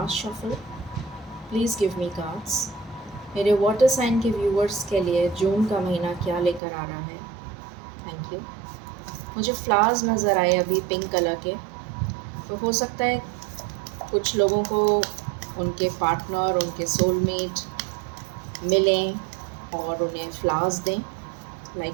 shuffle, please give me cards. मेरे वाटर साइन के व्यूअर्स के लिए जून का महीना क्या लेकर आ रहा है। Thank you. मुझे फ्लावर्स नज़र आए अभी पिंक कलर के, तो हो सकता है कुछ लोगों को उनके पार्टनर, उनके सोलमेट मिलें और उन्हें फ्लावर्स दें,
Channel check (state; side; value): drops out; left; at 6.6 s